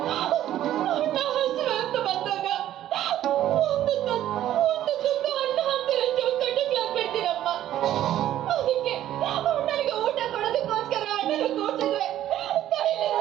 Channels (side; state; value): left; quieter; 12.4 dB